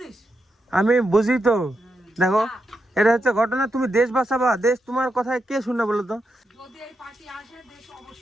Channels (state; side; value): normal; both; correlation 0.85